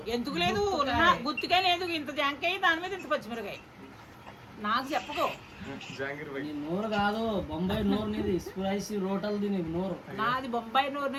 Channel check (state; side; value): identical; both; correlation 1.00